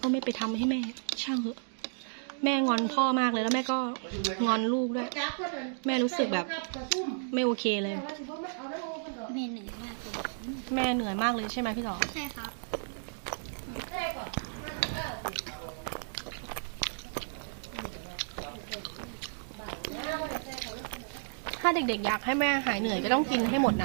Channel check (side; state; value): left; silent; digital silence